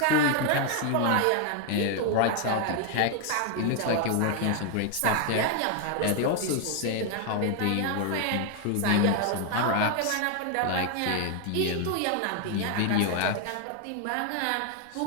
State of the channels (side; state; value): both; different; correlation 0.00